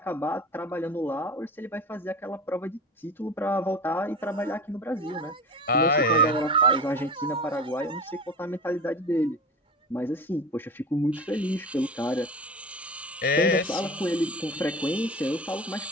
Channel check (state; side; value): normal; both; correlation 0.33